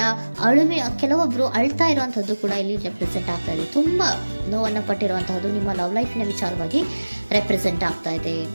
ಕೆಲವೊಬ್ರು ಅಳ್ತಾ ಇರುವಂತಹದ್ದು ಕೂಡ ಇಲ್ಲಿ ರೆಪ್ರೆಸೆಂಟ್ ಆಗ್ತಾ ಇದೆ. ತುಂಬಾ ನೋವನ್ನ ಪಟ್ಟಿರುವಂತಹದ್ದು ನಿಮ್ಮ ಲವ್ ಲೈಫ್ ನ ವಿಚಾರವಾಗಿ ರೆಪ್ರೆಸೆಂಟ್ ಆಗ್ತಾ ಇದೆ.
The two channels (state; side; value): inverted; both; correlation -1.00